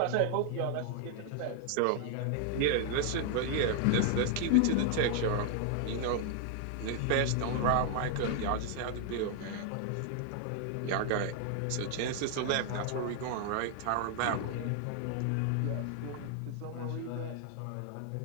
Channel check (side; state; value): both; different; correlation 0.00